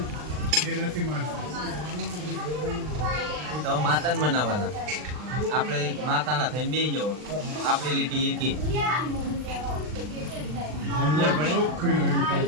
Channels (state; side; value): late; left; 39 ms